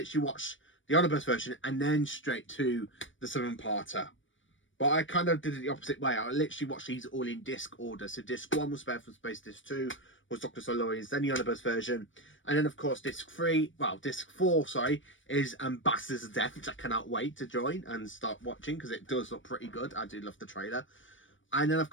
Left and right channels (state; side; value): late; right; 0.56 ms